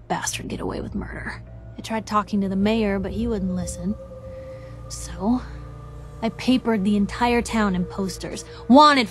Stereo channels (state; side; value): identical; both; correlation 1.00